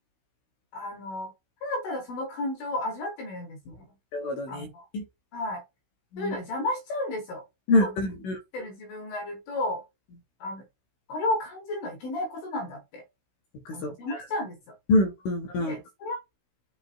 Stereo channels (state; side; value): late; right; 16 ms